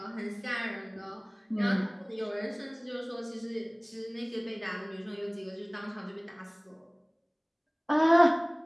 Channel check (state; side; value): identical; both; correlation 1.00